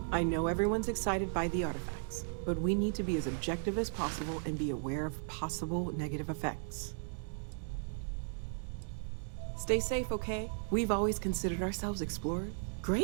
I know everyone's excited by the artifacts, but we need to be as objective as possible and be aware of possible negative effects. Stay safe, okay? We've always considered ourselves explorers.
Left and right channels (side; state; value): left; silent; digital silence